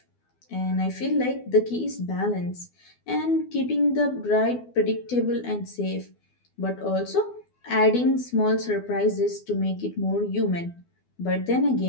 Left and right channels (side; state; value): right; late; 12 ms